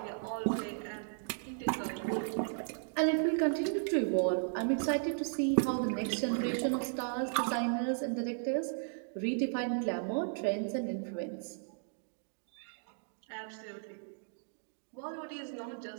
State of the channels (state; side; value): silent; left; digital silence